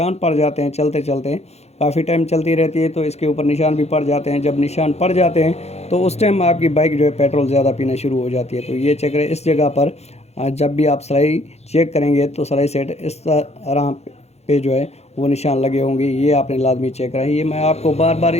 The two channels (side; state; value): right; late; 0.31 ms